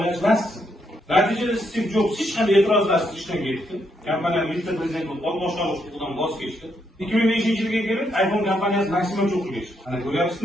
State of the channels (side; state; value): both; normal; correlation 0.77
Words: emassiz. Natijada Steve Jobs hech qanday e'tirozlarsiz ishdan ketdi. Kompaniya vitse-prezident bo'lib, boshqaruv huquqidan voz kechdi. 2005-yilga kelib iPhone kompaniyasi maksimum cho'qqiga chiqdi. Mana